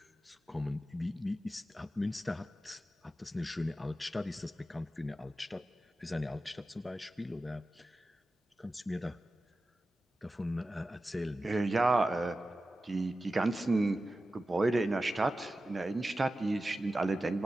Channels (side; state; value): both; normal; correlation 0.93